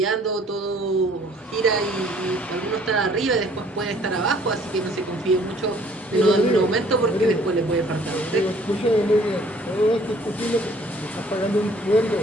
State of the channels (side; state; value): both; normal; correlation 0.57